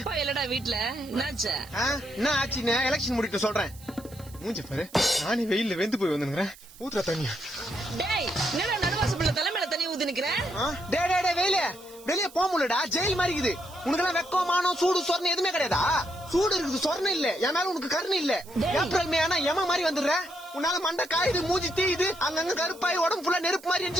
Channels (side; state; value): right; noise; hiss, 21 dB below the sound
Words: இல்லடா வீட்டுல என்னாச்சு? என்ன ஆச்சுன்னு எலெக்ஷன் முடிக்க சொல்றேன். மூஞ்ச பாரு, நானே வெயில்ல வெந்து போய் வந்துக்கிறேன். ஊத்துற தண்ணி. டேய் என்னடா நடுவாசப்பள்ள தலைமையில தண்ணி ஊத்தி நிக்கிறேன்? டே வெயில வெளியே போக முடியலடா, ஜெயில் மாதிரி இருக்குது. உனக்கெல்லாம் வெக்கம் மானம் சூடு சொரணை எதுவுமே கிடையாதா? சூடு இருக்குது, சொரணை இல்ல. என் மேல உனக்கு கருணை இல்ல. ஏப்ரல் மே ஆனா எம மாதிரி வந்துடுற. உன்னால மண்டை காயுது, மூஞ்சி தீயுது, அங்கங்க கருப்பாய் உடம்பு ஃபுல்லா நெருப்பு மாதிரி